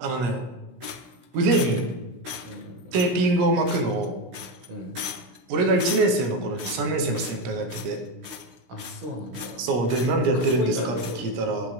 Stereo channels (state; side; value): late; left; 16 ms